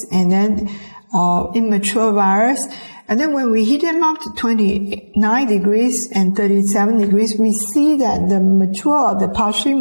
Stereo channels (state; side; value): inverted; both; correlation -1.00